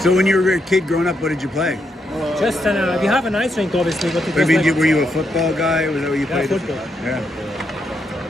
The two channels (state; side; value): normal; both; correlation 0.80